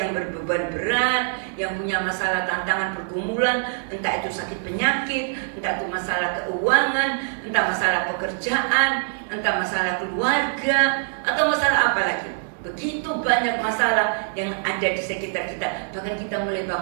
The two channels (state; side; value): silent; left; digital silence